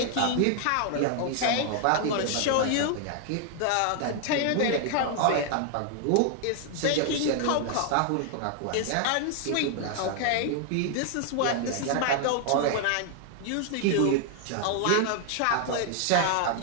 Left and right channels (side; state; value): both; different; correlation 0.00